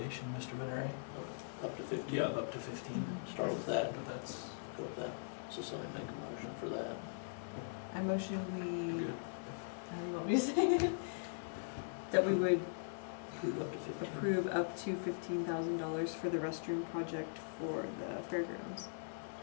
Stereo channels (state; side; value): silent; right; digital silence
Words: Mr. Venere. Up to 15. Yeah, up to 15. Start with that. But that's Go with that. So somebody make a motion for that. I motion we, good. how do you want me to say it? That we would approve up to 15. approve up to $15,000 for the restroom project for the fairgrounds.